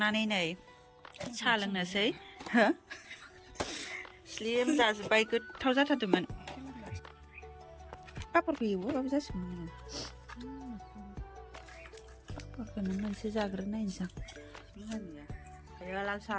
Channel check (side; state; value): both; identical; correlation 1.00